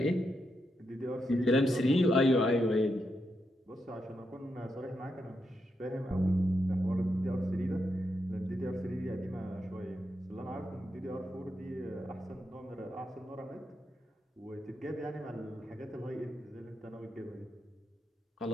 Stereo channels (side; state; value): both; normal; correlation 0.83